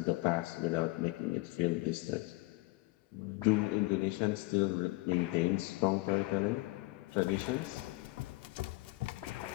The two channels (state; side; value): quieter; right; 22.7 dB